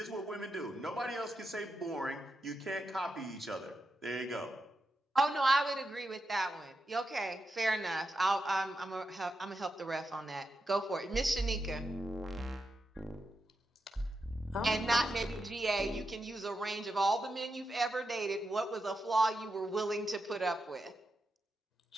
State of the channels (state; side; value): normal; both; correlation 0.87